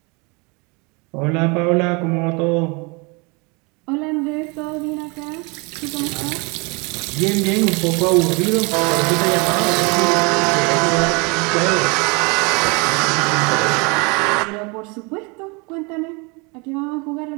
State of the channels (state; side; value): quieter; left; 29.8 dB